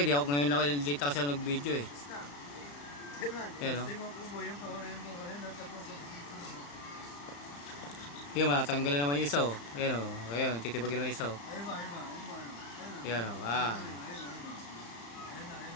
di ako ngayon lang dito kasi ako nag-video eh. Ayun o. Yun, matatanggal na naman yung isa o. Ayun o. Ayun, titibagin naman yung isa o. Ayun o.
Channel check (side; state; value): right; late; 35 ms